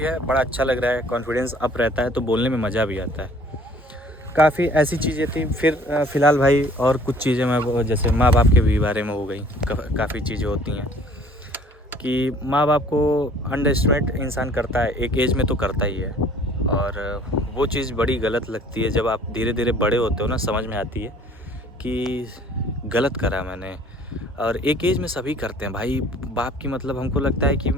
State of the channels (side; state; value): both; normal; correlation 0.54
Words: बड़ा अच्छा लग रहा है, कॉन्फिडेंस अप रहता है, तो बोलने में मज़ा भी आता है। काफ़ी ऐसी चीज़ें थी। फिर फ़िलहाल भाई और कुछ चीज़ें मैं, जैसे माँ बाप के भी बारे में हो गई। काफ़ी चीज़ें होती हैं कि माँ बाप को अंडरएस्टिमेट इंसान करता है, एक एज में तो करता ही है, और वो चीज़ बड़ी गलत लगती है। जब आप धीरे धीरे बड़े होते हो ना, समझ में आती है कि गलत करा मैंने। और एक एज में सभी करते हैं भाई। बाप की मतलब हमको लगता है कि